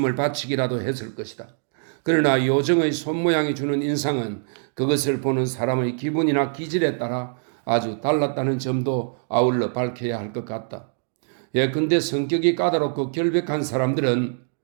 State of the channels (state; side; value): silent; left; 59 dB below the other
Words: 바치기라도 했을 것이다. 그러나 요정의 손모양이 주는 인상은 그것을 보는 사람의 기분이나 기질에 따라 아주 달랐다는 점도 아울러 밝혀야 할 것 같다. 예컨대 성격이 까다롭고 결백한 사람들은